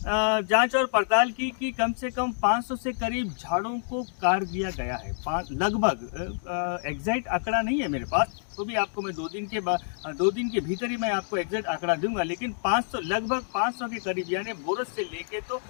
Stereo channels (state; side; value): silent; right; digital silence